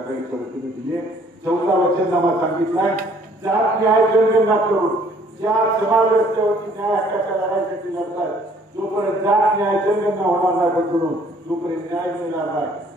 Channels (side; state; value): both; normal; correlation 0.59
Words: वतीने दिली आहे. चौथा वचननामा सांगितलाय जात न्याय जनगणना करून ज्या समाज रस्त्यावरती न्याय हक्काच्या लढाईसाठी लढतात जोपर्यंत जात न्याय जनगणना होणार नाही बदलून तोपर्यंत न्याय मिळणार नाही